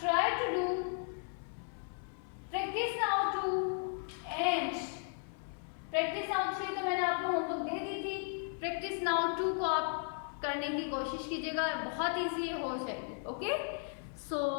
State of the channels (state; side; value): silent; right; 54 dB below the other